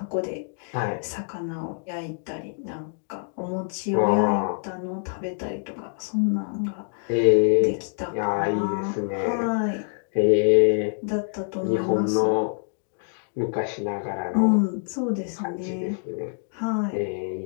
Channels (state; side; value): silent; right; digital silence